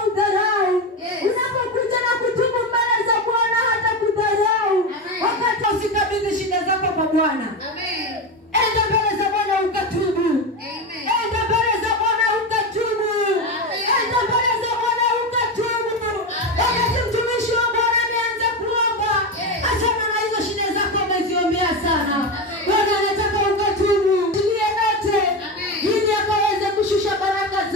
udharau. Yes. Unapokuja na kutubu mbele za Bwana hata kudharau. Amen. Wakati usikabidhi shida zako kwa Bwana. Amen. Enda mbele za Bwana ukatubu. Amen. Enda mbele za Bwana ukatubu. Amen. Enda mbele za Bwana ukatubu. Wakati mtumishi wa Bwana ameanza kuomba, Yes. achana na hizo shida zako umeziombea sana. Amen. Bwana anataka ukatubu. Tulie yote. Amen. Ili akaweze kushusha baraka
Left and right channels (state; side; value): normal; both; correlation 0.17